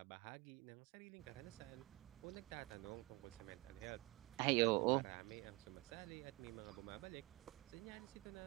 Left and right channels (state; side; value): quieter; left; 23.4 dB